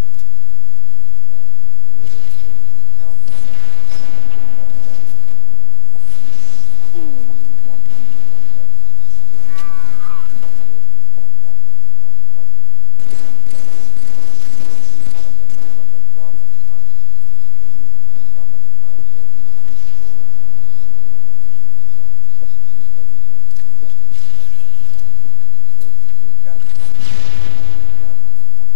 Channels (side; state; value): both; different; correlation 0.00